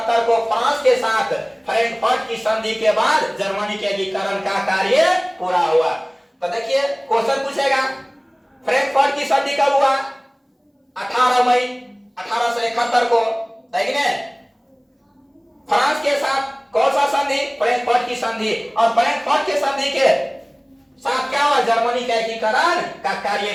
को फ्रांस के साथ फ्रैंकफर्ट की संधि के बाद जर्मनी के एकीकरण का कार्य पूरा हुआ। तो देखिए क्वेश्चन पूछेगा, फ्रैंकफर्ट की संधि कब हुआ? 18 मई 1871 को। फ्रांस के साथ कौन सा संधि? फ्रैंकफर्ट की संधि। और फ्रैंकफर्ट की संधि के साथ क्या हुआ? जर्मनी का एकीकरण का कार्य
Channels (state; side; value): identical; both; correlation 1.00